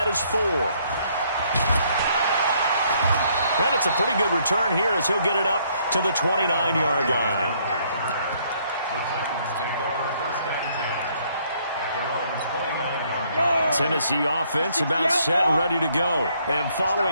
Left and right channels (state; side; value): inverted; both; correlation -0.67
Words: his 4. And it's a pretty good return here as he'll get it up to the 29-yard line. The Titans take over 1st and 10 at their own 29-yard line. Tennessee offense about set and ready to go. And